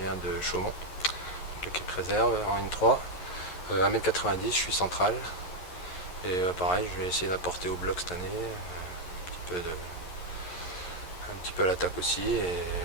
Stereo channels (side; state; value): right; late; 11 ms